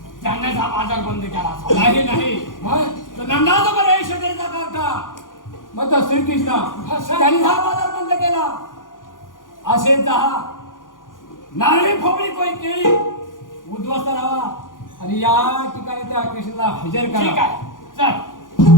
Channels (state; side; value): late; right; 0.89 ms